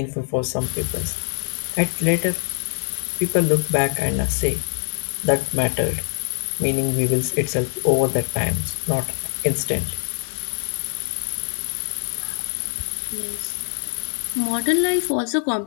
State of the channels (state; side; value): silent; right; digital silence